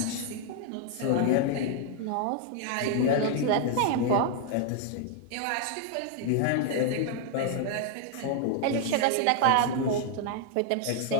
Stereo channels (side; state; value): both; different; correlation 0.00